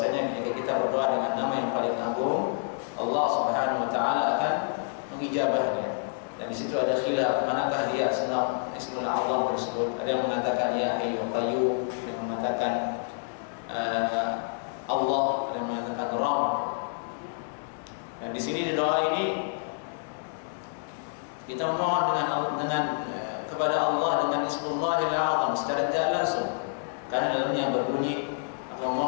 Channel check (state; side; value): silent; right; digital silence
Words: jika kita berdoa dengan nama yang paling agung, Allah Subhanahu wa taala akan mengijabahnya. Dan di situ ada khilaf manakah dia Ismul A'zam tersebut. Ada yang mengatakan Ya Hayyu Qayyum, ada yang mengatakan Allah, ada yang mengatakan Rabb. Dan di sini di doa ini kita memohon kepada Allah dengan Ismullahil A'zam secara tidak langsung, karena dalamnya berbunyi, aku